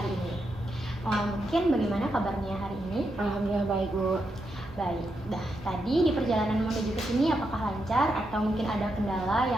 ini. Mungkin bagaimana kabarnya hari ini? Alhamdulillah baik Bu. Baik. Tadi di perjalanan menuju ke sini apakah lancar atau mungkin ada kendala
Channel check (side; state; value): both; normal; correlation 0.83